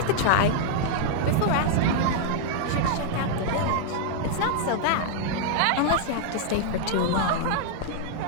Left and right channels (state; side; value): different; both; correlation 0.00